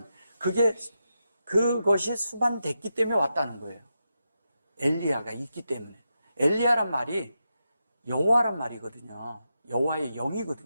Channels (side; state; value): both; inverted; correlation -0.87